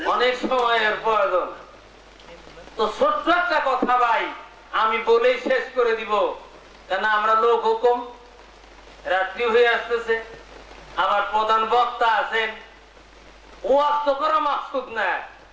অনেক সময়ের প্রয়োজন। তো ছোট্ট একটা কথা ভাই আমি বলেই শেষ করে দিব, কেন আমরা লোক হুকুম, রাত্রি হয়ে আসতেছে, আবার প্রধান বক্তা আছেন। ওয়াজ তো করা মাকসুদ না,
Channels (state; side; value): identical; both; correlation 1.00